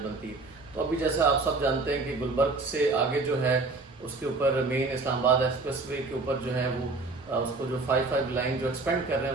बनती है। तो अभी जैसा आप सब जानते हैं कि गुलबर्ग से आगे जो है उसके ऊपर मेन इस्लामाबाद एक्सप्रेस वे के ऊपर जो है वो उसको जो 5 लाइन जो एक्सपेंड कर रहे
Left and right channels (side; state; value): left; quieter; 3.6 dB